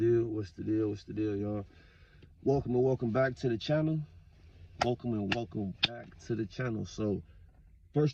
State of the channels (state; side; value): identical; both; correlation 1.00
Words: What's the deal? What's the deal, y'all? Welcome and welcome back to the channel. Welcome and welcome back to the channel. So,